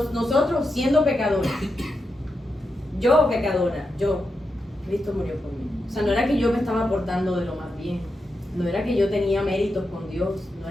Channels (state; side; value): normal; both; correlation 0.87